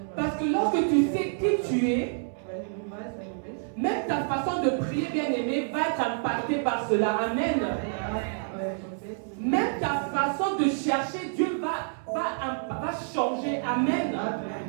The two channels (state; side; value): silent; left; 59 dB below the other